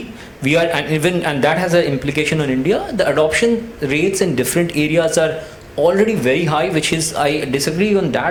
we are, and that has an implication on India, the adoption rates in different areas are already very high, which is, I disagree on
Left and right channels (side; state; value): both; identical; correlation 1.00